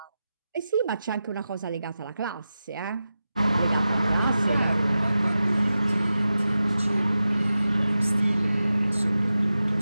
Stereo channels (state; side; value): inverted; both; correlation -0.92